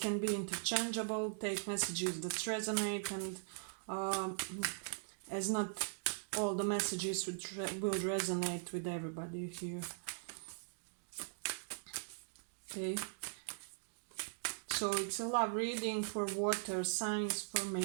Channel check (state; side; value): silent; left; digital silence